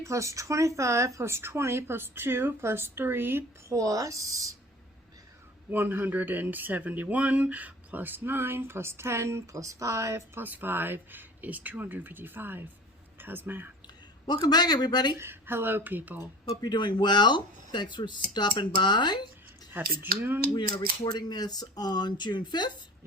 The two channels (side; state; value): both; normal; correlation 0.41